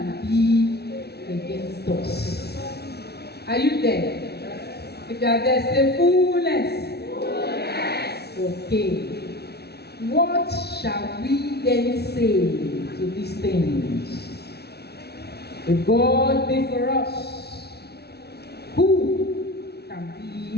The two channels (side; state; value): right; late; 0.48 ms